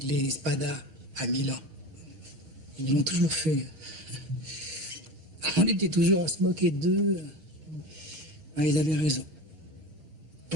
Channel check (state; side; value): late; left; 6.3 ms